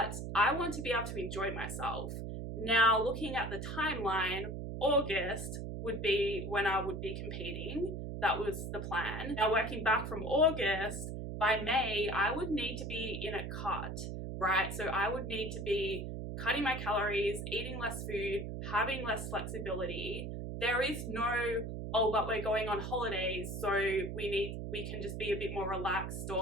I want to be able to enjoy myself. Now, looking at the timeline, August would be when I would be competing. That was the plan. Now, working back from August, by May, I would need to be in a cut, right? So I would need to be cutting my calories, eating less food, having less flexibility. There is no, oh, but we're going on holidays, so we can just be a bit more relaxed,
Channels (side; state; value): right; noise; hum, 5 dB below the sound